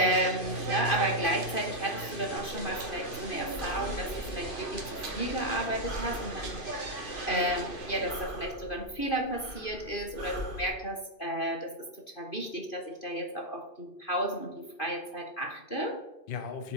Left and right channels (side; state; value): right; late; 2.5 ms